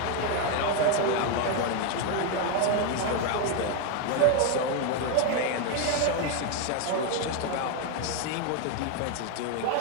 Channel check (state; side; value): different; both; correlation 0.01